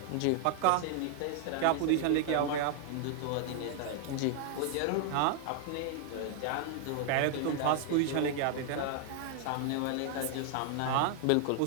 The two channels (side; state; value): both; different; correlation -0.01